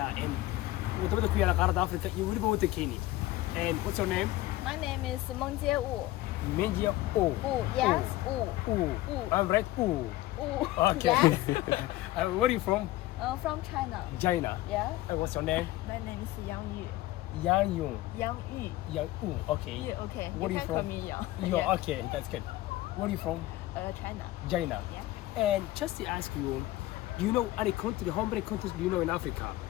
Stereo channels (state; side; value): quieter; right; 16.8 dB